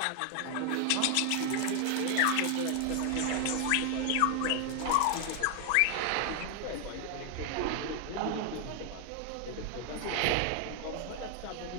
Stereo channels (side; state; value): both; different; correlation 0.00